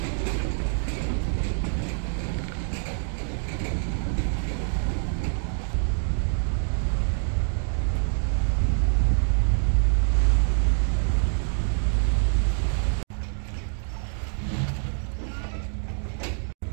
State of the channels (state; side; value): silent; left; 57 dB below the other